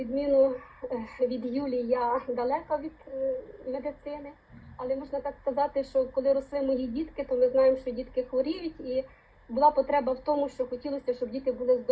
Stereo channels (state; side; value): identical; both; correlation 1.00